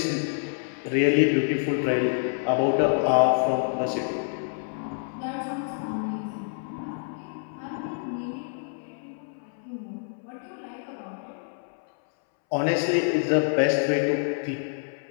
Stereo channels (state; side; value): silent; right; 60 dB below the other